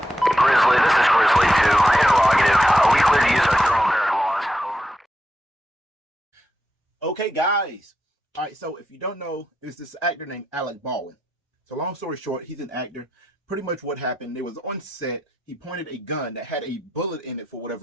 Grizzly, this is Grizzly 2. Interrogative. Are we clear to use our thermal barrack laws? Okay, guys. All right, so if you don't know, there's this actor named Alec Baldwin. So long story short, he's an actor. Pretty much what happened, there was on set, he pointed a gun that had a bullet in it for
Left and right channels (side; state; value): both; normal; correlation 0.86